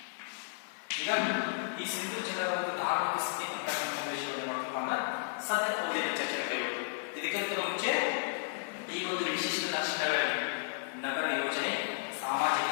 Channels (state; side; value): silent; right; 55 dB below the other